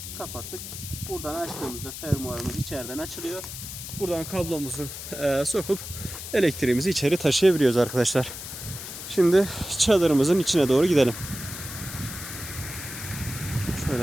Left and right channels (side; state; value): left; noise; hiss, 9 dB below the sound